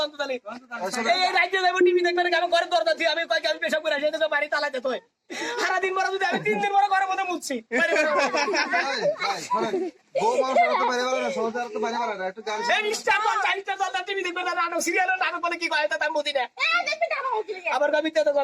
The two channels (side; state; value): both; identical; correlation 1.00